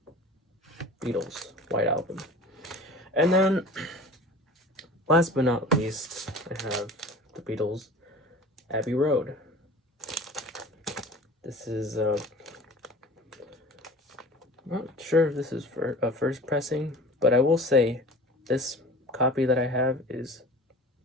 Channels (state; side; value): normal; both; correlation 0.40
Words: Beatles White Album. And then, last but not least, I have the Beatles Abbey Road. This is I'm not sure if this is for a first pressing, but I will say this copy that I have is